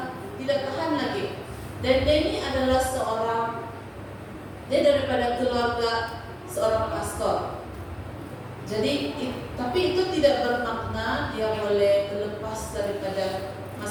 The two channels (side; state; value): both; identical; correlation 1.00